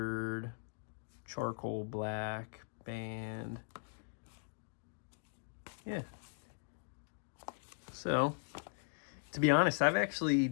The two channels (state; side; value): silent; right; digital silence